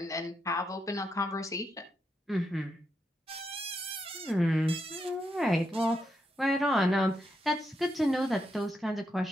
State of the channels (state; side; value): normal; both; correlation 0.82